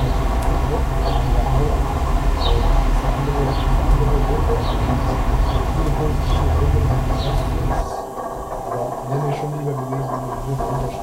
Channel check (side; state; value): both; identical; correlation 1.00